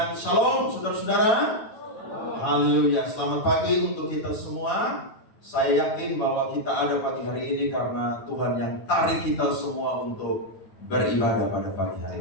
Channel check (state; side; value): late; right; 9.2 ms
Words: shalom saudara-saudara. Haleluya, selamat pagi untuk kita semua. Saya yakin bahwa kita ada pagi hari ini karena Tuhan yang tarik kita semua untuk beribadah pada pagi